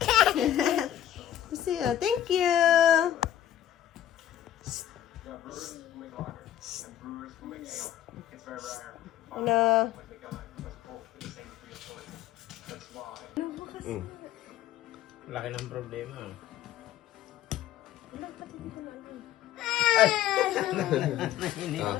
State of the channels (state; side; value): quieter; right; 11.6 dB